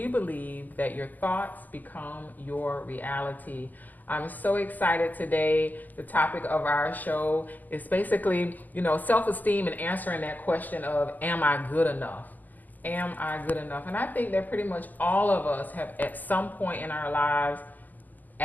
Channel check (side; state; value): right; late; 0.083 ms